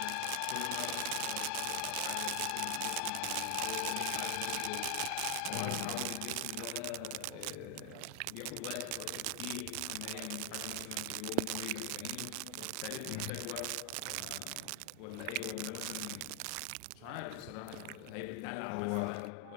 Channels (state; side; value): different; both; correlation 0.01